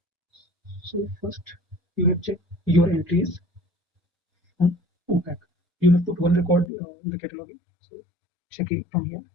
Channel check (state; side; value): drops out; right; at 6.7 s